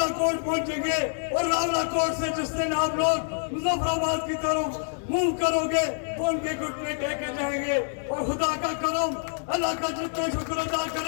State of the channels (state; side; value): silent; right; digital silence